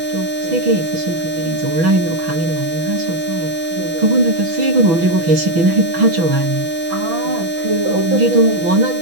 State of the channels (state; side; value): late; left; 6.1 ms